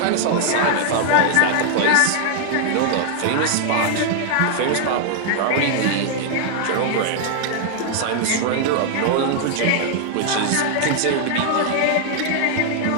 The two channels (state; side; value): different; both; correlation 0.00